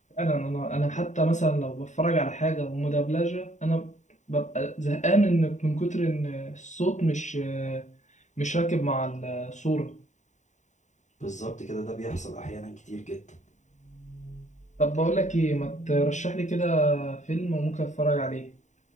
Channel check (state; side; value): late; right; 0.34 ms